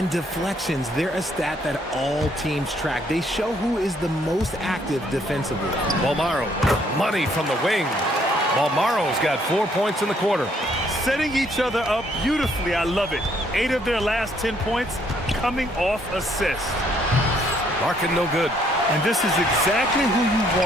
deflections, they're a stat that all teams track. They show who is the most active defensively. Almaro, money from the wing. Almaro's got 4 points in the quarter. Setting each other up beautifully, I love it. 8 of their last 10 points coming off assists. Larkin no good. And this is exactly who you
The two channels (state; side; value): normal; both; correlation 0.67